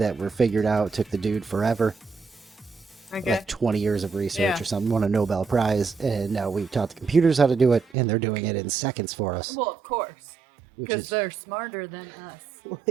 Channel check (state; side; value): drops out; left; at 7.9 s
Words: were figured out took the dude forever. Okay. Like 20 years of research Yeah. or something, won a Nobel Prize, and now we've taught the computers how to do it, and they're doing it in seconds for us. Well, of course. which Because is- they're smarter than us.